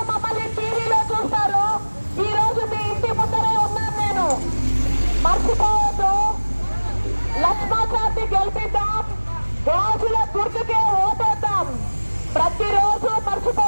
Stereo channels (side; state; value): both; inverted; correlation -1.00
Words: మమ్మల్ని టీవీలో చూస్తారు, ఈ రోజు మీ ఇంటి ముందరే ఉన్నాను నేను. మర్చిపోవద్దు, లక్ష్మాచార్ని గెలిపిద్దాం, గాజుల గుర్తుకే ఓటేద్దాం. ప్రతిరోజు